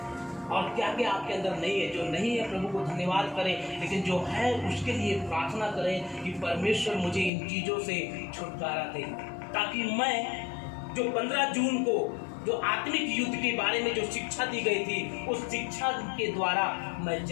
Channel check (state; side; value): drops out; right; at 7.3 s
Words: और क्या क्या आपके अंदर नहीं है। जो नहीं है प्रभु को धन्यवाद करें, लेकिन जो है उसके लिए प्रार्थना करें कि परमेश्वर मुझे इन चीज़ों से छुटकारा दे, ताकि मैं जो 15 जून को जो आत्मिक युद्ध के बारे में जो शिक्षा दी गई थी, उस शिक्षा के द्वारा मैं